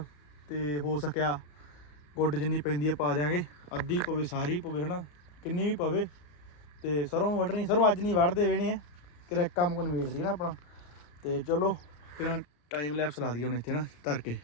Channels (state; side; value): late; right; 34 ms